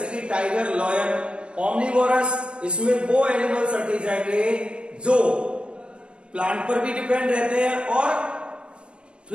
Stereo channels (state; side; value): late; left; 0.057 ms